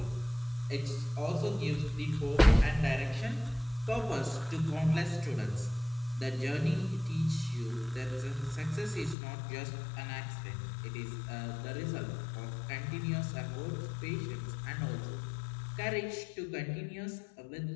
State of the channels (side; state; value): right; drops out; at 9.2 s